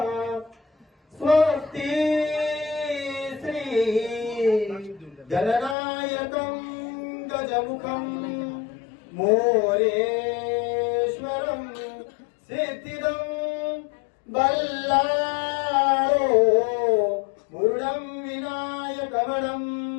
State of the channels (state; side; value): drops out; right; at 5.8 s